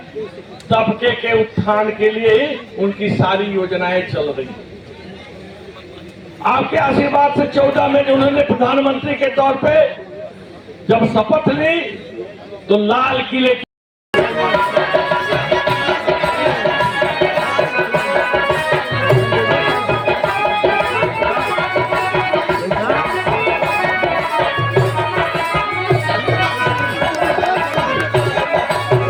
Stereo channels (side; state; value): both; identical; correlation 1.00